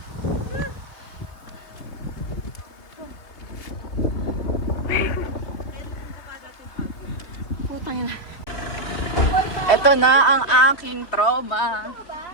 Ito na ang aking trauma.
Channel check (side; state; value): right; late; 3.3 ms